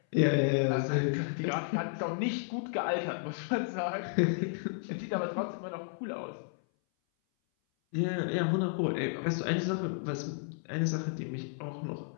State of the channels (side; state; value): right; silent; 56 dB below the other